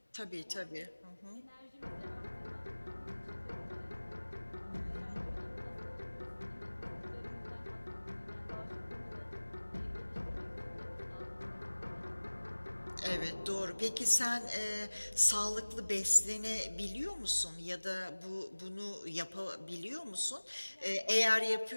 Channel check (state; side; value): inverted; both; correlation -1.00